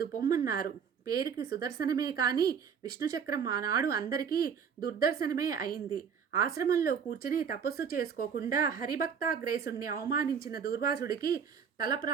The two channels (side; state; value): left; quieter; 7.0 dB